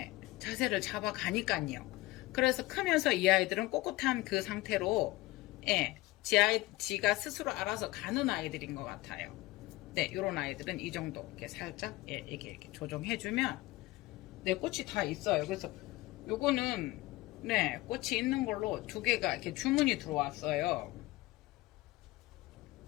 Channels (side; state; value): right; quieter; 19.3 dB